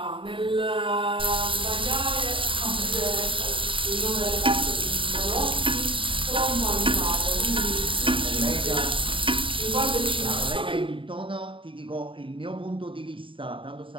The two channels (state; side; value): late; left; 0.25 ms